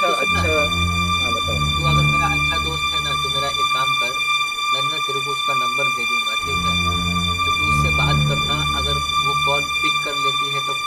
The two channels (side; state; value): both; identical; correlation 1.00